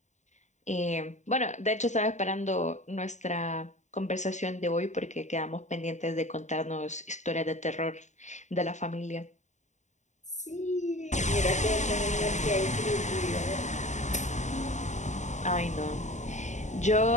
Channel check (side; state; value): right; late; 0.34 ms